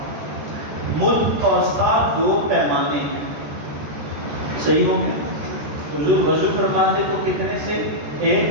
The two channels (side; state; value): left; late; 14 ms